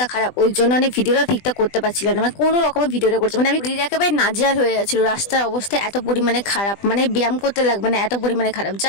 খারাপ, ওই জন্য আমি ভিডিওটা ঠিকঠাক করতে পারছিলাম না, মানে কোনো রকমের ভিডিওটা করছি মানে আমি একেবারে নাজেহাল হয়ে যাচ্ছিল। রাস্তার অবস্থা এত পরিমাণে খারাপ, মানে ব্যায়াম করতে লাগবে না এত পরিমাণে খারাপ।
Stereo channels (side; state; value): right; late; 20 ms